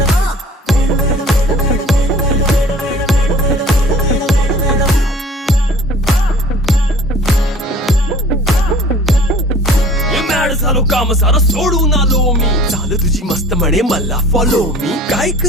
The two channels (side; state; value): both; normal; correlation 0.48